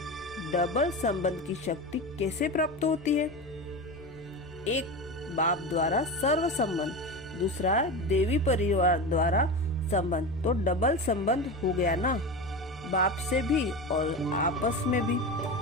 डबल संबंध की शक्ति कैसे प्राप्त होती है? एक बाप द्वारा सर्व संबंध, दूसरा देवी परिवार द्वारा संबंध, तो डबल संबंध हो गया ना, बाप से भी और आपस में भी।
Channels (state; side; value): noise; left; hum, 25 dB below the sound